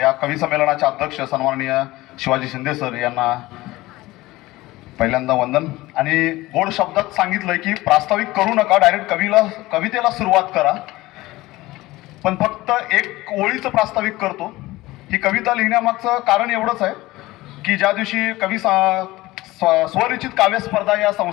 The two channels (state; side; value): quieter; right; 18.8 dB